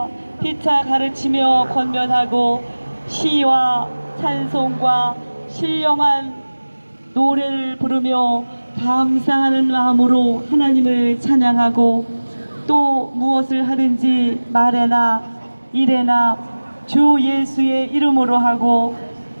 피차 가르치며 권면하고 시와 찬송과 신령한 노래를 부르며 감사하는 마음으로 하나님을 찬양하고 또 무엇을 하든지 말에나 일에나 주 예수의 이름으로 하고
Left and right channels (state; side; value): inverted; both; correlation -1.00